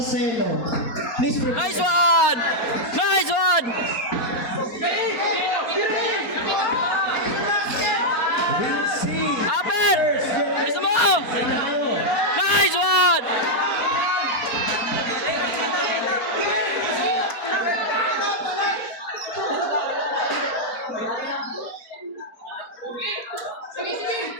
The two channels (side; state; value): right; late; 4.3 ms